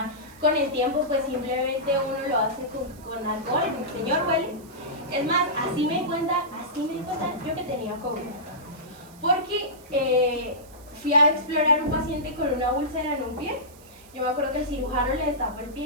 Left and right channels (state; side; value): noise; right; hiss, 24 dB below the sound